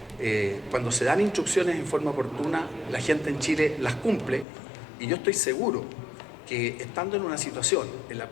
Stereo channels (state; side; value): drops out; right; at 4.5 s